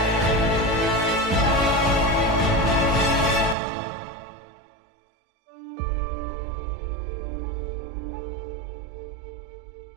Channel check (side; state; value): left; drops out; at 3.6 s